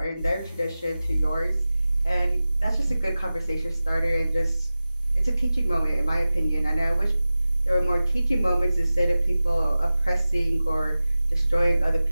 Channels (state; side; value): inverted; both; correlation -0.95